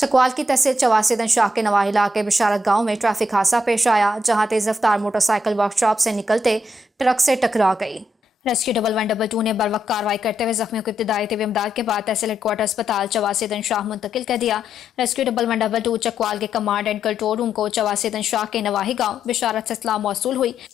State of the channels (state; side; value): normal; both; correlation 0.79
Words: चकवाल की तहसील चवासीदन शाह के नवाही इलाके बिशारत गांव में ट्रैफिक हादसा पेश आया, जहां तेज रफ्तार मोटरसाइकिल वर्कशॉप से निकलते ट्रक से टकरा गई। रेस्क्यू 112 ने बरवक्त कार्रवाई करते हुए जख्मियों को इब्तिदाई तिब्बी इमदाद के बाद तहसील हेडक्वार्टर अस्पताल चवासीदन शाह मुंतकिल कर दिया। रेस्क्यू 112 चकवाल के कमांड एंड कंट्रोल रूम को चवासीदन शाह के नवाही गांव बिशारत से इत्तला मौसूल हुई